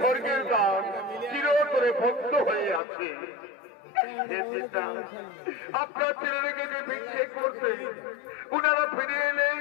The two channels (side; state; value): right; drops out; at 2.8 s